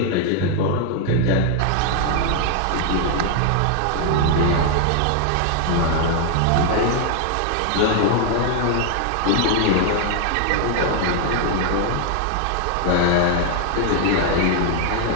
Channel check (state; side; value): different; both; correlation 0.00